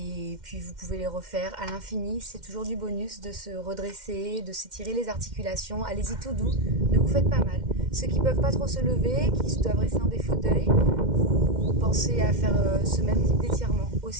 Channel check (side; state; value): left; late; 2.1 ms